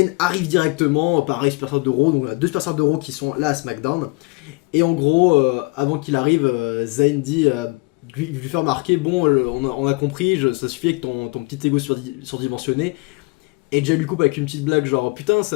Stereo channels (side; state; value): right; quieter; 26.1 dB